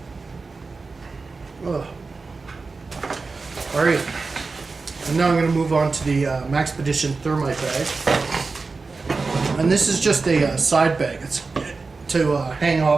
Ugh. Alright, and now I'm going to move on to the Maxpedition Thermite bag. And this is just a side bag. It's to hang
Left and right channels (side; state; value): left; quieter; 4.1 dB